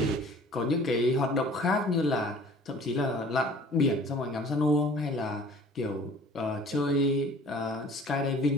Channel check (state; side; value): normal; both; correlation 0.49